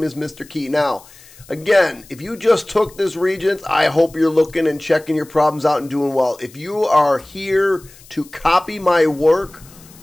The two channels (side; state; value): left; noise; hiss, 23 dB below the sound